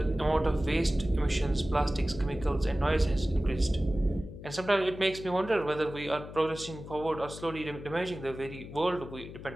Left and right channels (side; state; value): left; noise; hum, 13 dB below the sound